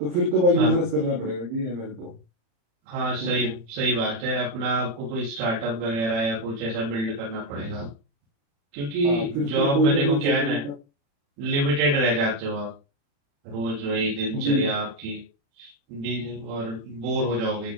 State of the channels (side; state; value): left; late; 35 ms